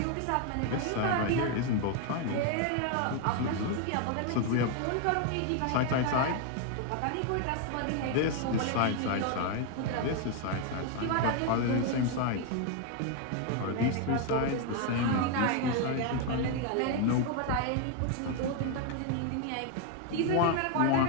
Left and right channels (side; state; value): both; different; correlation 0.01